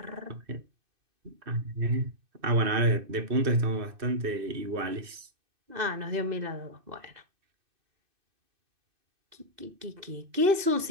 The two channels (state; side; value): late; left; 2.6 ms